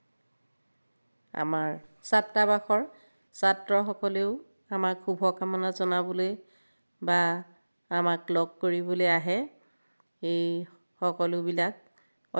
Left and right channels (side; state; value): both; inverted; correlation -1.00